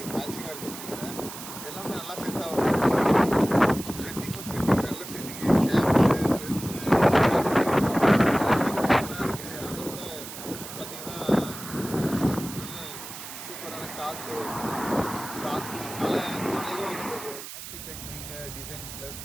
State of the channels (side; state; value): right; noise; hiss, 11 dB below the sound